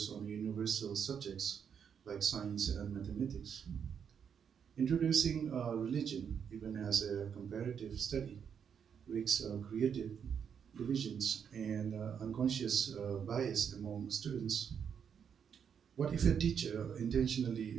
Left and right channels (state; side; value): quieter; left; 7.5 dB